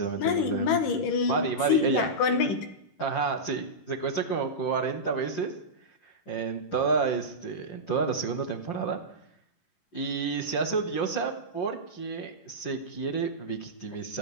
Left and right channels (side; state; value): right; late; 11 ms